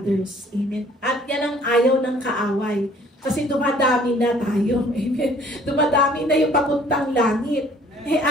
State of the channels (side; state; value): both; normal; correlation 0.56